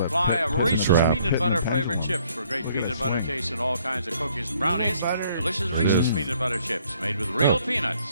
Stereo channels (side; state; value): both; inverted; correlation -0.64